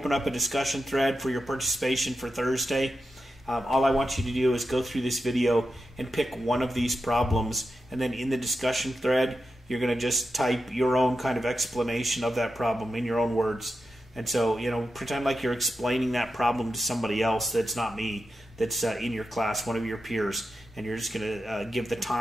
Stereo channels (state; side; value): normal; both; correlation 0.89